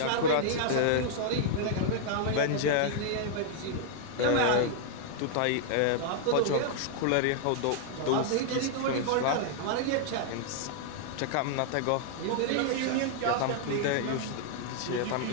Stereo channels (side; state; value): both; different; correlation 0.00